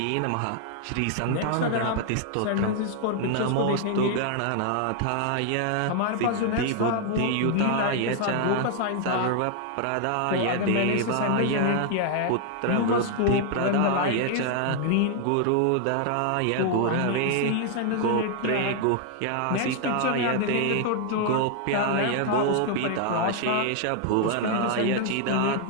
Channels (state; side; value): different; both; correlation 0.00